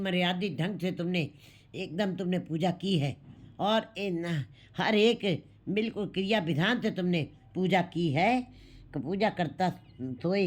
ढंग से तुमने एकदम तुमने पूजा की है, और हर एक बिल्कुल क्रिया विधान से तुमने पूजा की है। पूजा करता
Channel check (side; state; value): both; identical; correlation 1.00